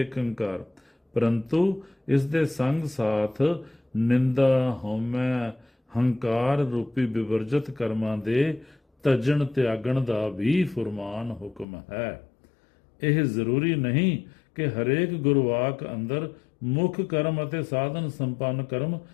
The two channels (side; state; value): right; drops out; at 11.7 s